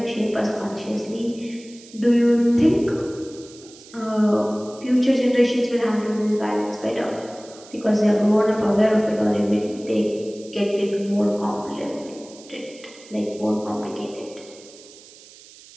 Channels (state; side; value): noise; right; hiss, 21 dB below the sound